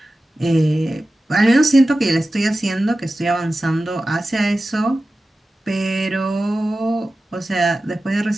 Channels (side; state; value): both; normal; correlation 0.94